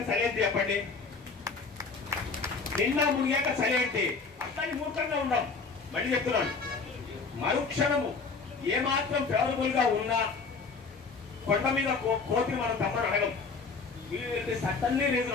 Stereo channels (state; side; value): quieter; right; 4.6 dB